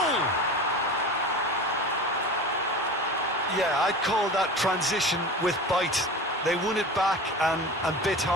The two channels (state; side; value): normal; both; correlation 0.32